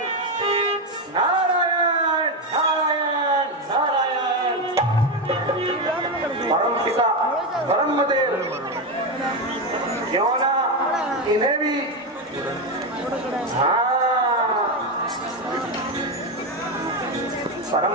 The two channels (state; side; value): normal; both; correlation 0.10